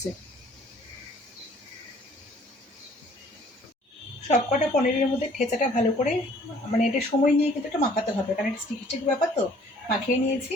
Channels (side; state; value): both; normal; correlation 0.57